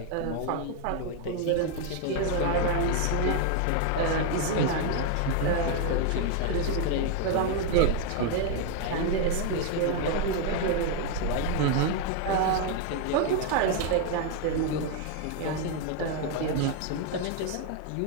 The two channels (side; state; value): both; different; correlation 0.01